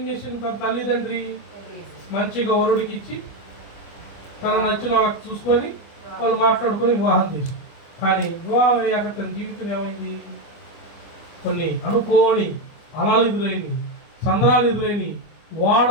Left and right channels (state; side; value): late; right; 25 ms